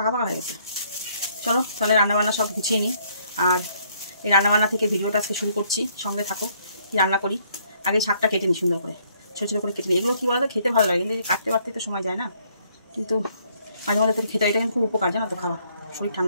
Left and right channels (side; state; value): both; inverted; correlation -0.67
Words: পাকা হয়ে গেছে। চলো তাহলে রান্নাবান্না সব গুছিয়ে নিই। আর এই রান্নাবান্না থেকে ভিডিওটা আজকে শুরু করছি, সঙ্গে থাকো। কি রান্না করি, আগে শাকটা কেটে নিই সুন্দর করে, ছোটো ছোটো করে কেটে নিই। এগুলো কী বলো তো, খেতে ভালো লাগে, কিন্তু কাটতে পারতে তো সময় যায় না। কিন্তু মাঝে মাঝে তো খেতে, এটা কিন্তু খুব উপকার, জানো তো, খাওয়া শরীর